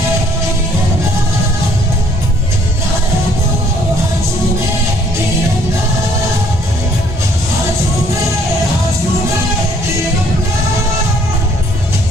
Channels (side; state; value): both; normal; correlation 0.62